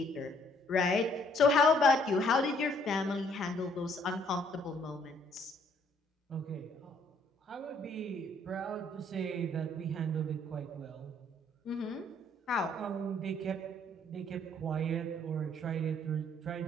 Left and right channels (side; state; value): both; normal; correlation 0.64